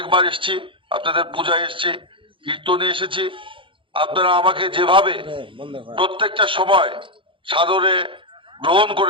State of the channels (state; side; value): late; left; 0.25 ms